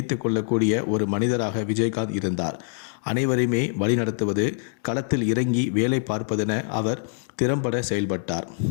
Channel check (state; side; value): silent; right; digital silence